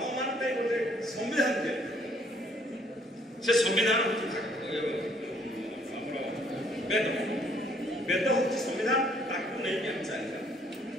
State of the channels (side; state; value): both; normal; correlation 0.64